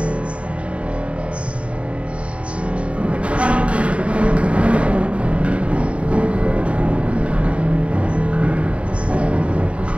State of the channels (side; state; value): left; late; 0.062 ms